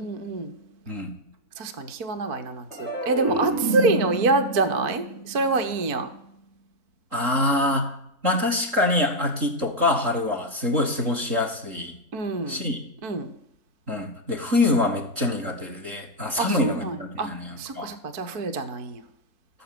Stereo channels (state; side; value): late; left; 3.8 ms